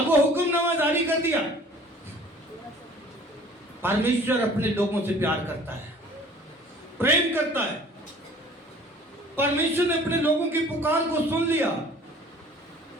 वो हुक्मनामा जारी कर दिया। परमेश्वर अपने लोगों से प्यार करता है, प्रेम करता है, परमेश्वर ने अपने लोगों की पुकार को सुन लिया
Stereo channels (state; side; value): normal; both; correlation 0.50